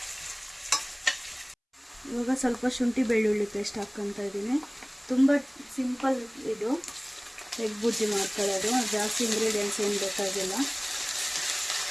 ಇವಾಗ ಸ್ವಲ್ಪ ಶುಂಠಿ ಬೆಳ್ಳುಳ್ಳಿ ಪೇಸ್ಟ್ ಹಾಕ್ಕೊತಾ ಇದ್ದೀನಿ. ತುಂಬ ಸಿಂಪಲ್ ಇದು ಎಗ್ ಬುಜ್ಜಿ ಮಾಡ್ಕೊಳ್ಳೋದು, ಜಾಸ್ತಿ ಇಂಗ್ರೀಡಿಯೆಂಟ್ಸ್ ಏನು ಬೇಕಾಗಿಲ್ಲ.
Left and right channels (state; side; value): identical; both; correlation 1.00